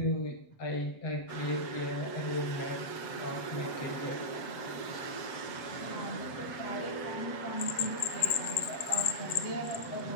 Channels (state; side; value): late; right; 7.8 ms